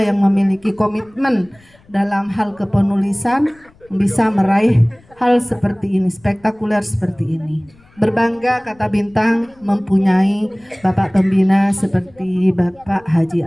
memiliki komitmen dalam hal kepenulisan bisa meraih hal seperti ini, spektakuler seperti ini. Berbangga Kata Bintang mempunyai Bapak Pembina seperti Bapak Haji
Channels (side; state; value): left; noise; rumble, 30 dB below the sound